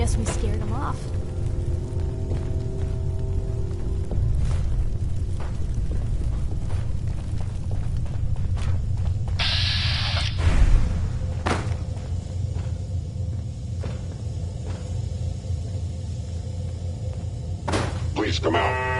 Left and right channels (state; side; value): identical; both; correlation 1.00